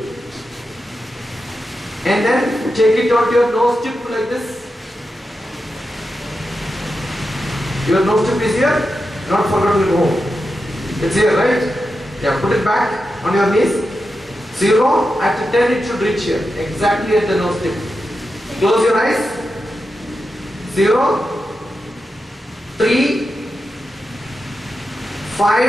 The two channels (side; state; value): both; normal; correlation 0.89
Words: And then take it onto your nose tip like this. Your nose tip is here. Not forgotten at home. It's here, right? Yeah, put it back on your knees. 0, at 10 it should reach here. Exactly at the nose tip. Close your eyes. 0, 3,